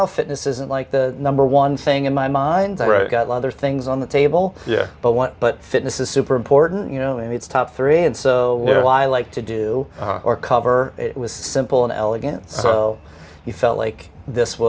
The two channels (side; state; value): both; identical; correlation 1.00